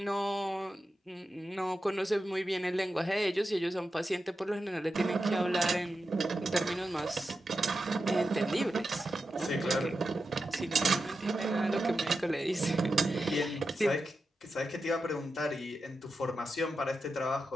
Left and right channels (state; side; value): normal; both; correlation 0.90